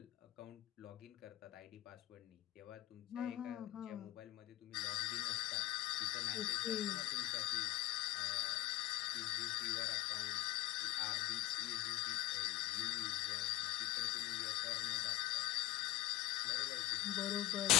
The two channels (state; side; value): quieter; right; 15.8 dB